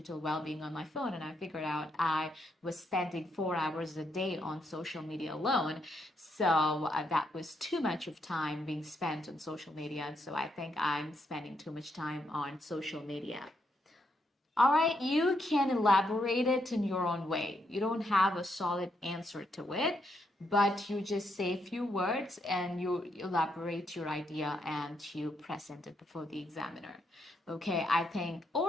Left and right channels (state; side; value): normal; both; correlation 0.78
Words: well-being on my phone, and I figured out I was spending 4 hours a day on social media alone. So that was too much of time being spent on social media. And so I think I'm spending too much time on social media. All right, you can elaborate it in your own way. You don't have a solid answer to it, but you just say a few words and you elaborate your idea and you present it before the examiner. Okay, I think,